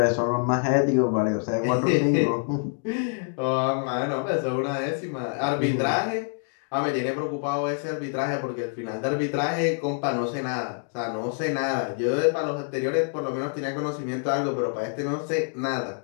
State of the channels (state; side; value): silent; right; 61 dB below the other